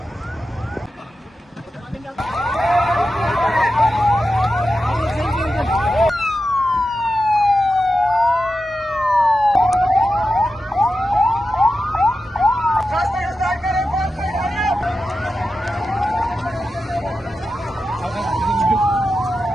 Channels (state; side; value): normal; both; correlation 0.91